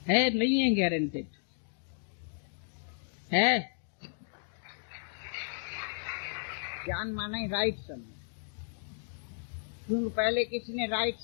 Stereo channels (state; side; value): silent; right; digital silence